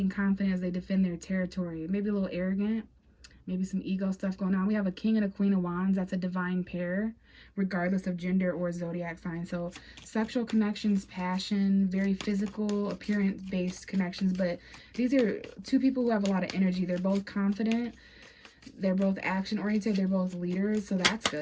confident as they defend their territory. Maybe a little arrogant. Maybe some ego stuff going on. We have a King and a Queen of Wands. That's a divine pair, regardless of gender or zodiac sign. So sexual connections, passion, very physical, appearance-based connections. But these are two people who have a lot of energy. They're both confident. They're both action-oriented. They're both leaders. So that's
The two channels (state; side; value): identical; both; correlation 1.00